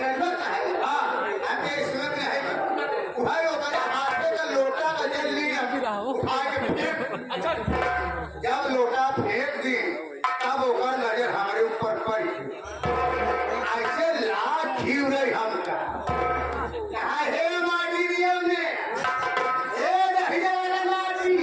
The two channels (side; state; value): both; identical; correlation 1.00